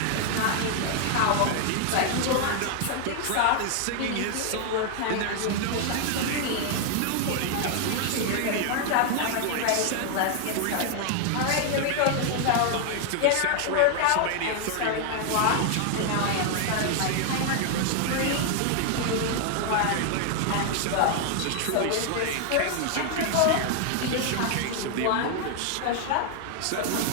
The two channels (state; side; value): different; both; correlation 0.00